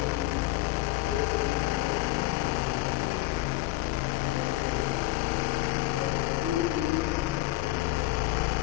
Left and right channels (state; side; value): quieter; right; 18.5 dB